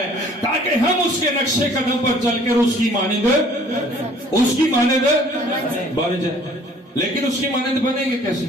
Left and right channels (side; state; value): both; normal; correlation 0.54